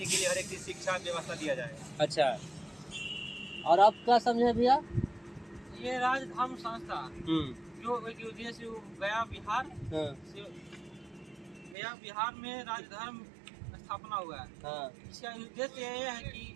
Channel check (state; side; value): drops out; left; at 11.8 s